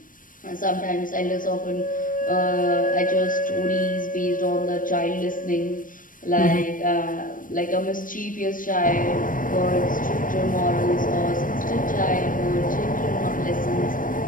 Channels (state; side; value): late; right; 0.39 ms